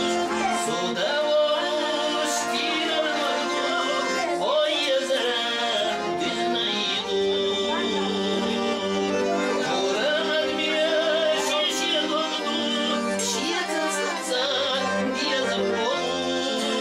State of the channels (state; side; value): identical; both; correlation 1.00